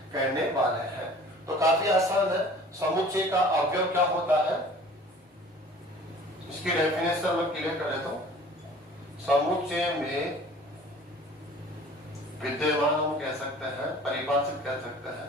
कहने वाले हैं। तो काफी आसान है, समुच्चय का अवयव क्या होता है, इसकी डेफिनेशन में क्लियर कर देता हूं। समुच्चय में विद्यमान हम कह सकते हैं, परिभाषित कह सकते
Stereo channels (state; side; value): normal; both; correlation 0.47